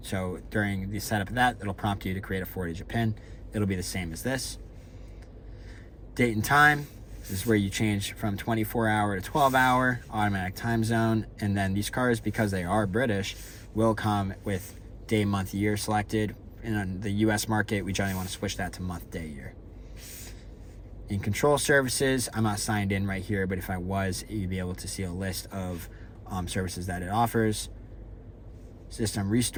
So during the setup of that, it'll prompt you to create a 4-digit PIN. It'll be the same as this. Date and time. This is where you change from 24-hour to 12-hour, automatic time zone. And then these cars, because they are British, will come with day, month, year selected. And on the US market, we generally want to switch that to month, day, year. In Control services, I'm not signed in right here, but if I was, you'd be able to see a list of services that it offers. System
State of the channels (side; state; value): both; identical; correlation 1.00